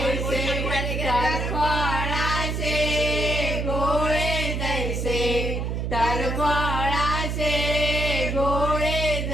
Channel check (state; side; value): noise; right; hum, 1 dB below the sound